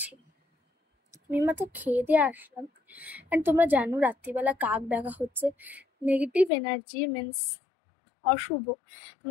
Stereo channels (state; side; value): drops out; right; at 6.5 s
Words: আমি মাত্র খেয়ে দিয়ে আসলাম। অ্যান্ড তোমরা জানো রাত্রিবেলা কাক ডাকা হচ্ছে নেগেটিভ এনার্জি, মিনস অশুভ।